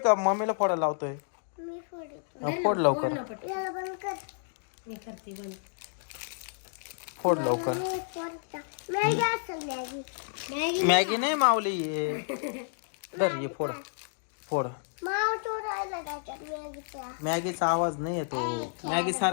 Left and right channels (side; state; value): right; silent; digital silence